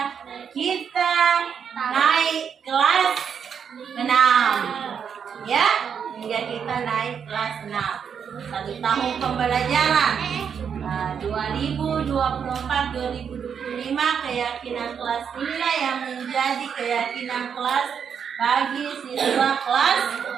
kita naik kelas 6, ya, hingga kita naik kelas 6. 1 tahun pembelajaran 2024-2025 keyakinan kelas inilah yang menjadi keyakinan kelas bagi siswa kelas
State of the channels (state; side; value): quieter; left; 7.3 dB